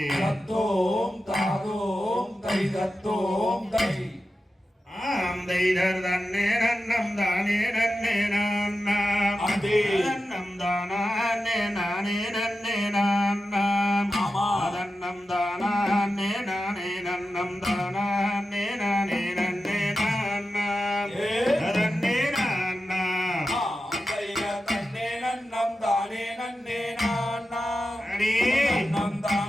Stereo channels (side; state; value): both; normal; correlation 0.92